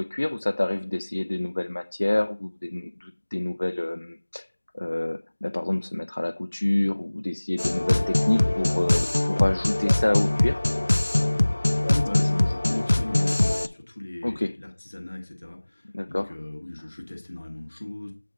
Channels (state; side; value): inverted; both; correlation -1.00